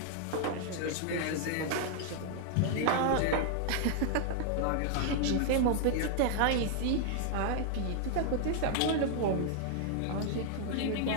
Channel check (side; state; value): both; different; correlation 0.00